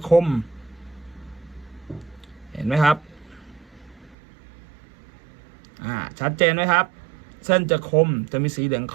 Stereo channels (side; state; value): left; drops out; at 4.2 s